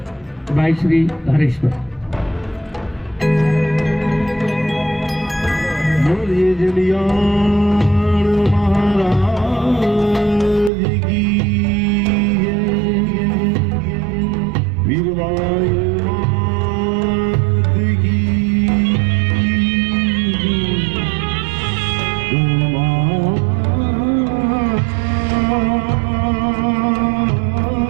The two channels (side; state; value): left; drops out; at 10.7 s